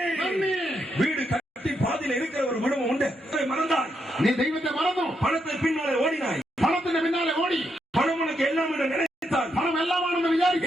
நன்றி. வீடு கட்டி பாதியில இருக்கிற ஒரு குடும்பம் உண்டு. மறந்தாய், நீ தெய்வத்தை மறந்தோம். பணத்தை பின்னாலே ஓடினாய். பணத்தின் பின்னாலே ஓடி பணம் உனக்கு எல்லாம் என்று நினைத்தால் பணம் எல்லாம்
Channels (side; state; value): both; normal; correlation 0.80